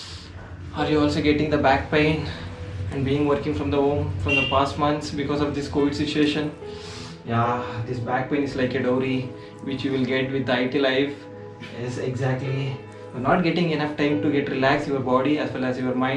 Are you also getting the back pain and being working from the home from the past months because of this COVID situation? Yeah, this back pain is like a dowry which you will get with the IT life. Yes, exactly. You're not getting enough time to get relax your body as well as your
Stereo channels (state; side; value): identical; both; correlation 1.00